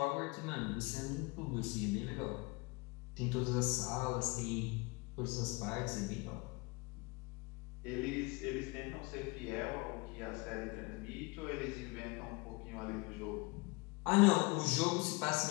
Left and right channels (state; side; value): quieter; right; 26.6 dB